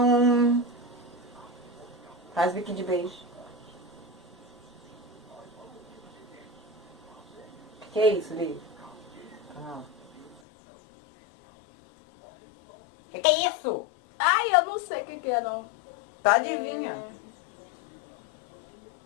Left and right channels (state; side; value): drops out; right; at 10.4 s